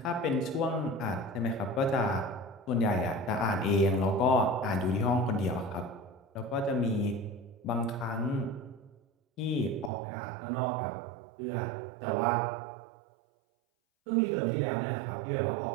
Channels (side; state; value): left; drops out; at 9.9 s